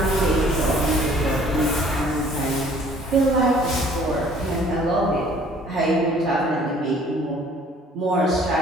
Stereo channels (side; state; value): both; normal; correlation 0.55